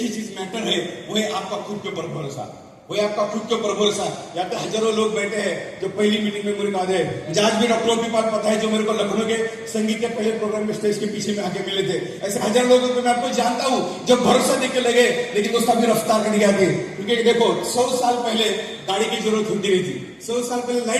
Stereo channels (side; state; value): both; identical; correlation 1.00